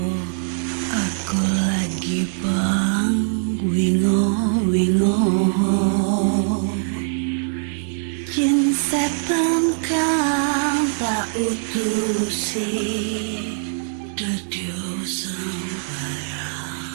aku lagi bang wingo jin setan kang tak utusi dadyo sembarang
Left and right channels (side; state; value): left; silent; digital silence